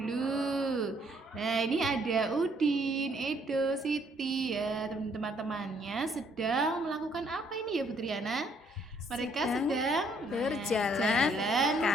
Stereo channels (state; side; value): normal; both; correlation 0.66